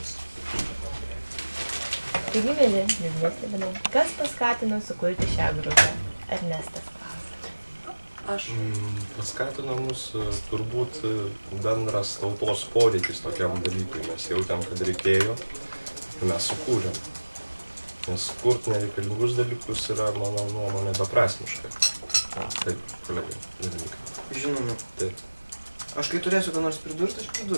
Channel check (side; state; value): both; inverted; correlation -1.00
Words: Taigi, mėly, liūdnesnė, kas paskatino sukurti šią grupę? Ernestas klausia. Aš. Paskatino mus turbūt bendras tautos poreikis tokiam dalykui. Mes jautėm, kad reikėjo ir mes sukūrėm. Nes kurt nereikalingus dalykus yra, mano nuomonė, beprasmiška. Taip, kolegai, dalykai. Žinoma. Taip. Aš kai turėsiu ką nors pridurti, aš